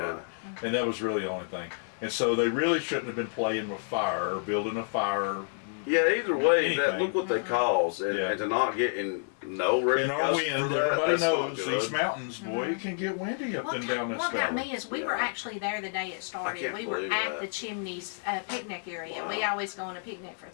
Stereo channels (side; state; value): right; silent; 58 dB below the other